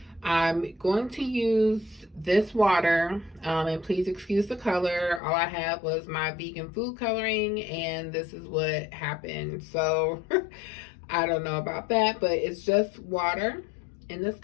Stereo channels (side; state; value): right; drops out; at 5.2 s